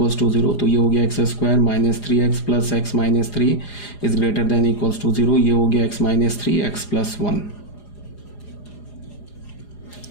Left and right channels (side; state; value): right; late; 4.9 ms